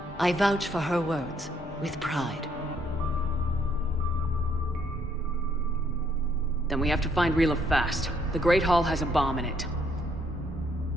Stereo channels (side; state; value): both; normal; correlation 0.70